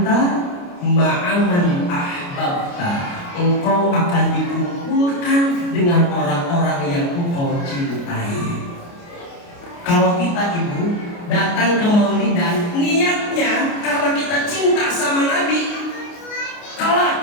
ma'aman ahbabta. Engkau akan dikumpulkan dengan orang-orang yang engkau cintai. Kalau kita, Ibu, datang ke maulidan, niatnya karena kita cinta sama Nabi,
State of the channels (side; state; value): right; late; 29 ms